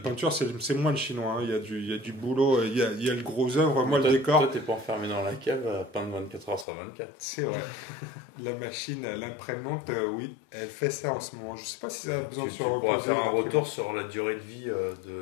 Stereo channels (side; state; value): right; drops out; at 6.7 s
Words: c'est moins le chinois. Hein. Il y a du boulot, il y a le gros œuvre. Moi, le décor. Toi, t'es pas enfermé dans la cave à peindre 24 heures sur 24. C'est vrai. La machine, l'imprimante, oui, elle fait ça en ce moment. Je sais pas si ça a besoin de se reposer. On pourra faire un retour sur la durée de vie